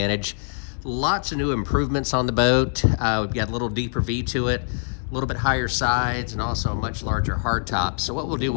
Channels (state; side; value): silent; right; digital silence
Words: Lots of new improvements on the boat. We've got a little deeper V to it, a little bit higher sides, and also a much larger hardtop. So what we'll do,